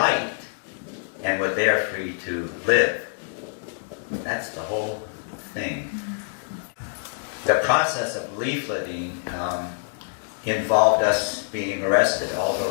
and what they are free to live. That's the whole thing. The process of leafleting involved us being arrested, all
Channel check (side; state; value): right; silent; digital silence